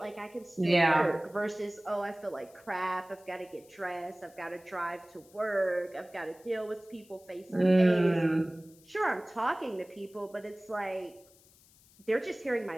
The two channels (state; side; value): noise; left; hiss, 27 dB below the sound